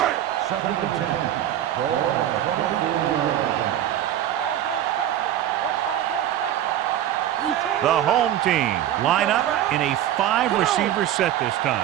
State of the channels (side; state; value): left; quieter; 11.8 dB